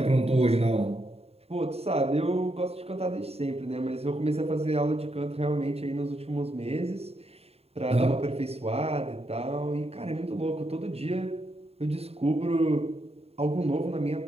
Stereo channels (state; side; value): late; left; 0.29 ms